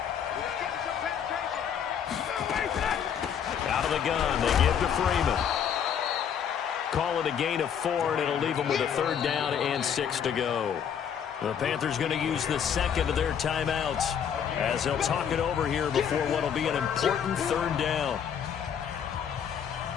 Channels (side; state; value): right; quieter; 8.2 dB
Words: Out of the gun, they give to Freeman. Call it a gain of 4, and it'll leave them with a 3rd down and 6 to go. The Panthers going to use the second of their timeouts as they'll talk it over here before what will be an important 3rd down.